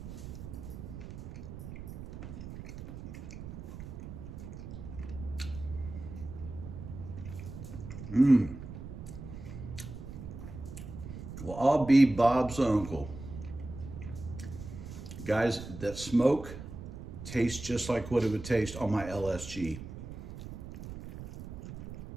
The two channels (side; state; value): right; noise; rumble, 10 dB below the sound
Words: Well, I'll be Bob's uncle. Guys, that smoke tastes just like what it would taste on my LSG.